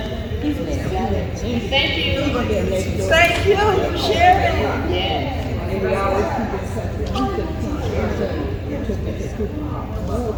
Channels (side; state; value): both; identical; correlation 1.00